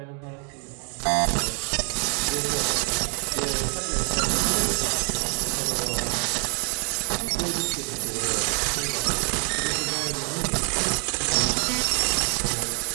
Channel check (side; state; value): left; quieter; 38.0 dB